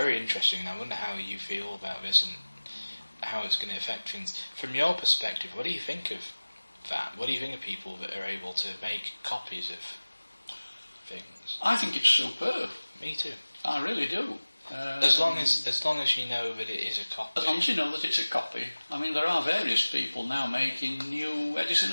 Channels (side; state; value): both; inverted; correlation -1.00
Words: interesting, and I wonder how you feel about this and how it's going to affect things. From your perspective, what do you think of that? What do you think of people that are able to make copies of things? I think it's superb. Me too. I really do. As long as you know that it is a copy. As long as you know that it's a copy. I mean, there are various people now making new Edison